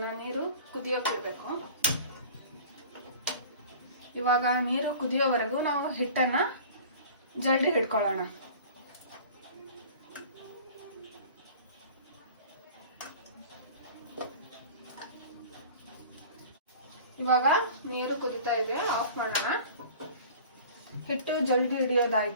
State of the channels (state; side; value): inverted; both; correlation -0.42